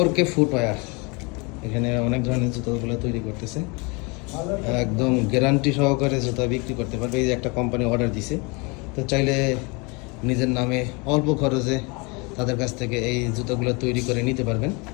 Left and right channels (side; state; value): right; quieter; 29.2 dB